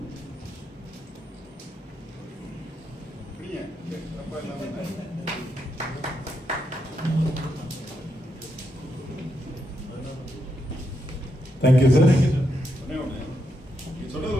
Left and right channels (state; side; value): normal; both; correlation 0.82